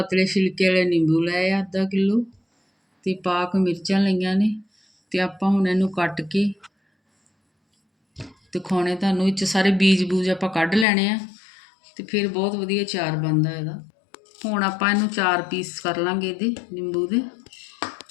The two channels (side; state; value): right; drops out; at 10.9 s